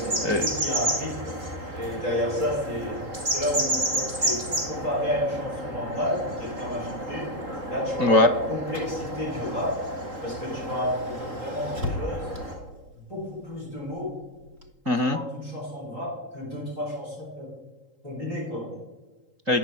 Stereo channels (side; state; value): left; late; 3.8 ms